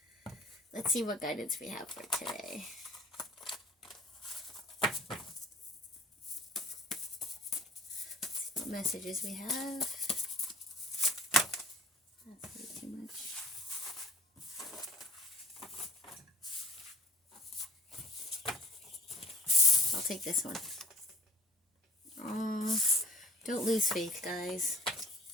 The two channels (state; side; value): normal; both; correlation 0.53